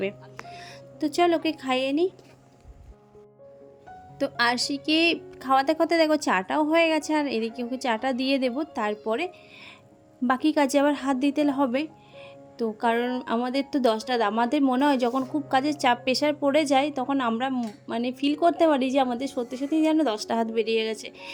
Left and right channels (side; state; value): both; identical; correlation 1.00